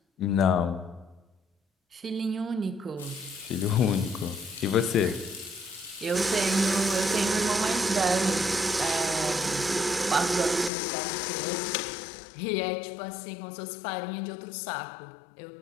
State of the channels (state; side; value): drops out; right; at 10.7 s